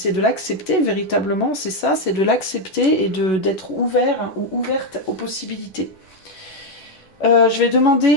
l'accepter véritablement, c'est ça, c'est de l'accepter et d'être ouvert ou ouverte aux possibilités. Je vais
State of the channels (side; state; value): right; late; 11 ms